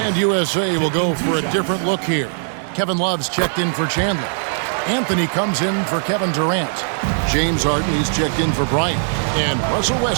And USA will go for a different look here. Kevin Love's checked in for Chandler. Anthony comes in for Kevin Durant. James Harden, he's checked in for Bryant. And Russell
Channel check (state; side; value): silent; left; digital silence